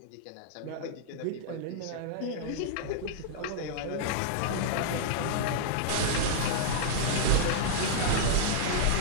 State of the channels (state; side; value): different; both; correlation -0.02